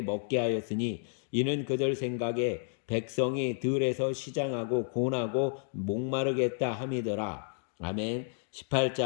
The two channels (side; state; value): right; silent; 57 dB below the other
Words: 먹게 하였으니 이는 그들 생각에 백성이 들에서 시장하고 곤하고 목마르겠다 함이더라. 아멘.